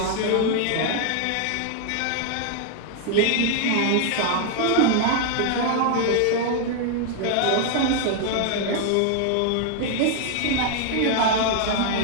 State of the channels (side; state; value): both; different; correlation 0.00